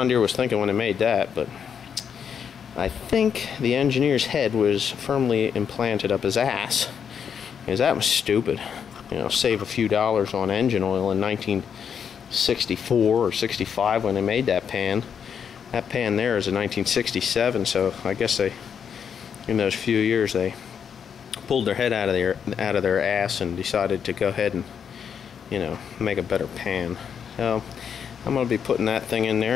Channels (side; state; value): right; quieter; 7.5 dB